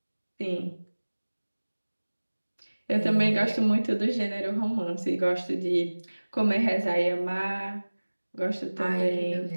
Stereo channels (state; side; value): inverted; both; correlation -1.00